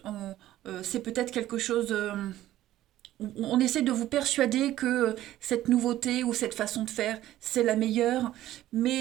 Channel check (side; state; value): left; quieter; 14.0 dB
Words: C'est peut-être quelque chose. On essaie de vous persuader que cette nouveauté ou cette façon de faire, c'est la meilleure.